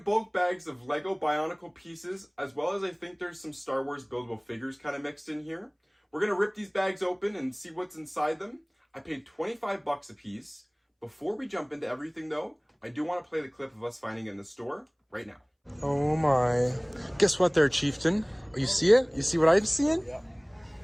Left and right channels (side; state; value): both; identical; correlation 1.00